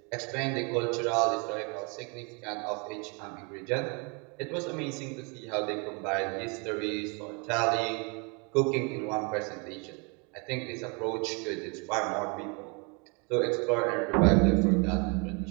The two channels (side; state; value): left; quieter; 32.9 dB